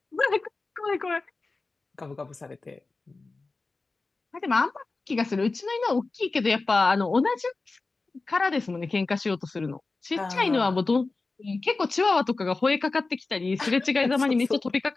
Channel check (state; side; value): quieter; right; 3.7 dB